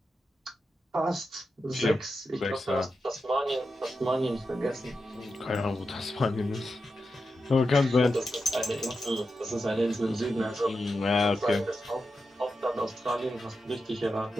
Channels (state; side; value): normal; both; correlation 0.89